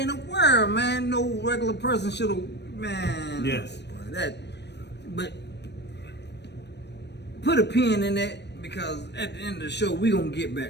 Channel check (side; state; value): right; late; 0.50 ms